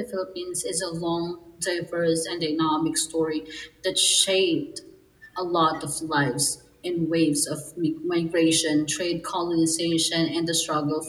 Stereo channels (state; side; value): identical; both; correlation 1.00